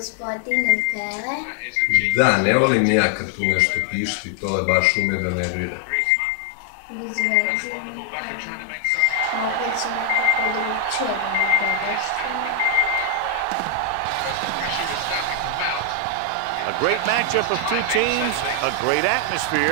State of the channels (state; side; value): different; both; correlation 0.00